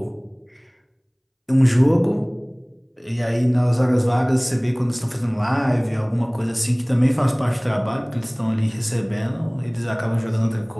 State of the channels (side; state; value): both; identical; correlation 1.00